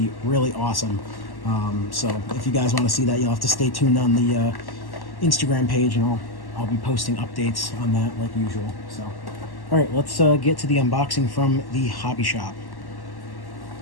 really awesome. So if you guys want to see that, you'll have to stay tuned on the Instagram page, and I'll be posting updates on that like usual. So, all right, let's get to the unboxing from the hobby shop.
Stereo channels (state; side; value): late; right; 1.1 ms